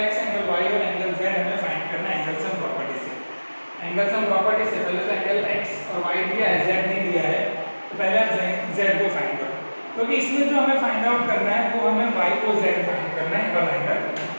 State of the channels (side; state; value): both; inverted; correlation -1.00